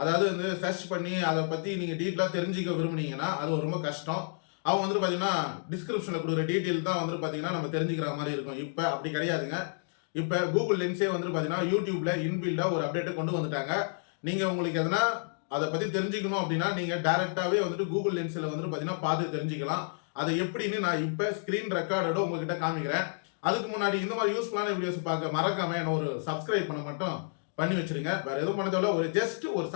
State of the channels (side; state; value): right; silent; digital silence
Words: அதாவது வந்து சர்ச் பண்ணி அதை பற்றி நீங்கள் டீட்டெயிலாக தெரிஞ்சுக்க விரும்புனீங்கன்னா அது ரொம்ப கஷ்டம். அவங்க வந்துட்டு பார்த்தீங்கன்னா டிஸ்கிரிப்ஷனில் கொடுக்குற டீட்டெயில் தான் வந்துட்டு பார்த்தீங்கன்னா நம்ம தெரிஞ்சுக்கிற மாதிரி இருக்கும். இப்போ அப்படி கிடையாதுங்க. இப்போ கூகுள் லென்ஸே வந்துட்டு பார்த்தீங்கன்னா யூடியூப்ல இன்பில்டாக ஒரு அப்டேட்டை கொண்டு வந்துட்டாங்க. நீங்கள் உங்களுக்கு எதனா அதை பற்றி தெரிஞ்சுக்கணும் அப்படின்னா நீங்கள் டைரெக்டாகவே வந்துட்டு கூகுள் லென்ஸில் வந்துட்டு பார்த்தீங்கன்னா பார்த்து தெரிஞ்சுக்கலாம். அதை எப்படின்னு நான் இப்போ ஸ்க்ரீன் ரெக்கார்டோட உங்ககிட்ட காமிக்கிறேன். அதுக்கு முன்னாடி இந்த மாதிரி யூஸ்ஃபுல்லான வீடியோஸ் பார்க்க மறக்காம என்ன ஒரு சப்ஸ்கிரைப் பண்ண மட்டும் பண்ணி வச்சிருங்க. வேற எதுவும் பண்ணதோட ஒரு ஜஸ்ட் ஒரு